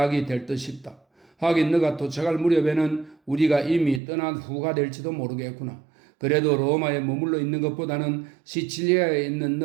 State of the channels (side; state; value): left; drops out; at 4.0 s